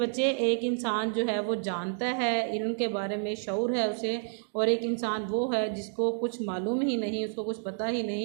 एक इंसान जो है वो जानता है, इल्म के बारे में शऊर है उसे, और एक इंसान वो है जिसको कुछ मालूम ही नहीं, उसको कुछ पता ही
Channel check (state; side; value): silent; left; digital silence